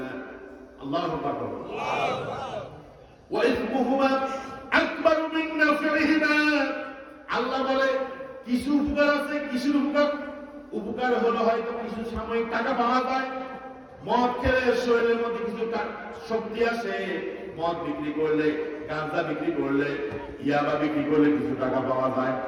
আল্লাহু আকবার। ওয়া ইসমুহুমা আকবারু মিন নাফিহিমা, আল্লাহ বলে কিছু উপকার আছে, কিছু উপকার হলো হয়তো কিছু সাময়িক টাকা পাওয়া যায়। মদ খেলে শরীরের মধ্যে কিছু শক্তি আসে, মদ বিক্রি করলে, গাঁজা বিক্রি করলে, ইয়াবা বিক্রি করলে কিছু টাকা পাওয়া যায়।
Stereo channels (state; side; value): identical; both; correlation 1.00